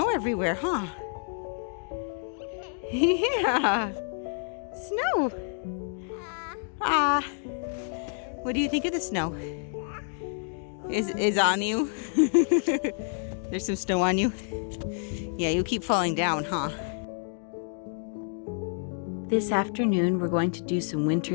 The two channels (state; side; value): silent; right; 59 dB below the other